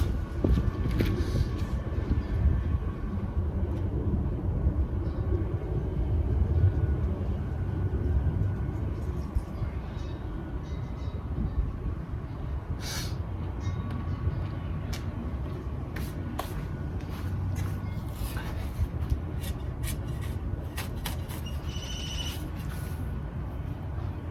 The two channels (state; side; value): identical; both; correlation 1.00